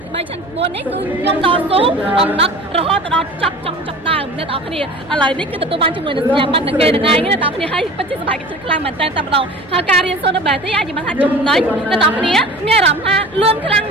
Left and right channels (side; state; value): both; normal; correlation 0.39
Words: ទី3ឆ្នាំទី4នេះគឺខ្ញុំតស៊ូអំណត់រហូតដល់ចប់ដើមអ្នកទាំងគ្នាឥឡូវនេះគឺទទួលបានជាមួយនឹងសញ្ញាបត្រនឹងគេនឹងឯងអ្នកទាំងគ្នាហើយពិតជាសប្បាយចិត្តខ្លាំងមែនតើតែម្ដងហើយការរៀនសូត្រនៅ BETI អាចនិយាយបានថាចំណេញអ្នកទាំងគ្នាមានអារម្មណ៍ថាលឿនខ្លាំង